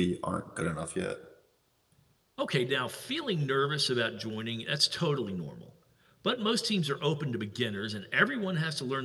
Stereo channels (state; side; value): identical; both; correlation 1.00